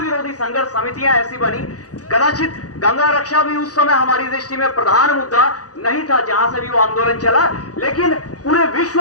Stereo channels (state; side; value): late; right; 0.67 ms